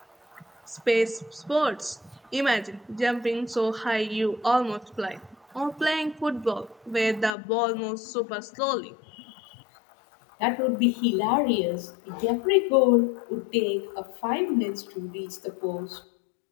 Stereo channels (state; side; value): drops out; right; at 7.3 s